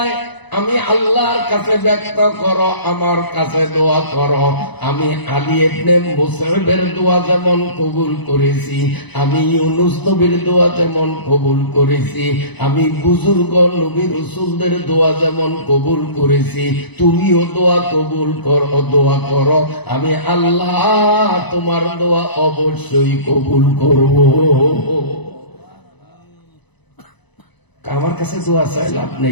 আমি আল্লাহর কাছে ব্যক্ত করো, আমার কাছে দোয়া করো। আমি আলী ইবনে মুসাইবের দোয়া যেমন কবুল করেছি, আমি ইউনুস নবীর দোয়া যেমন কবুল করেছি, আমি বুজুর্গ নবী রাসূলদের দোয়া যেমন কবুল করেছি, তুমিও দোয়া কবুল করো, দোয়া করো। আমি আল্লাহ তোমার দোয়া অবশ্যই কবুল করব। আমার কাছে দোয়া চাই লাভ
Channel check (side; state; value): right; late; 1.0 ms